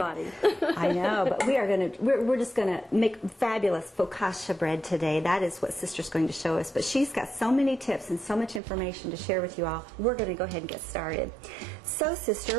I know, but we're just gonna make fabulous focaccia bread today. That is what Sister's going to show us. But she's got so many tips and so much information to share with you all. We're gonna go ahead and get started. So,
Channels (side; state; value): left; drops out; at 8.6 s